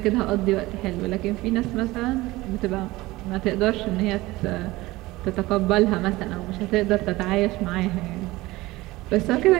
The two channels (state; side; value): quieter; left; 19.4 dB